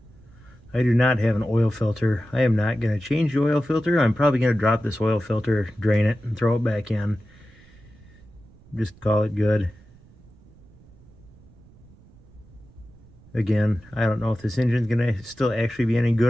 I do not have an oil filter. I am not going to change the oil filter. I'm probably going to drop this oil filter, drain it, and throw it back in. Just call it good. Again, I don't know if this engine's going to still actually be any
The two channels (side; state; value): right; noise; rumble, 25 dB below the sound